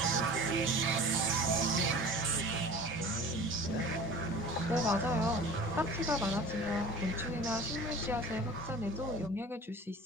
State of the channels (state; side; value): normal; both; correlation 0.40